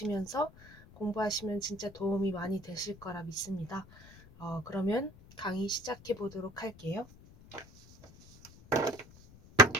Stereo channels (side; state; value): left; noise; rumble, 22 dB below the sound